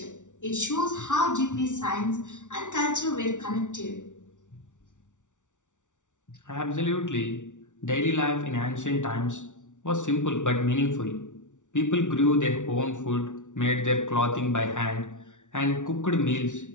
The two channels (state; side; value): late; right; 0.86 ms